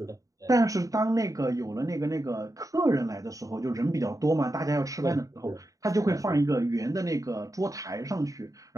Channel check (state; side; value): late; left; 0.16 ms